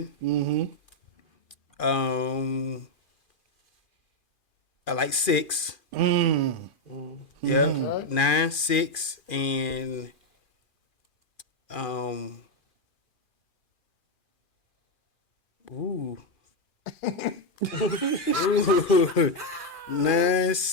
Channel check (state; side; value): late; right; 2.4 ms